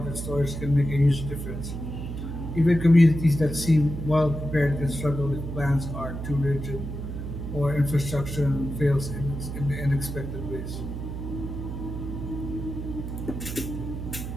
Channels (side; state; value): right; noise; hum, 6 dB below the sound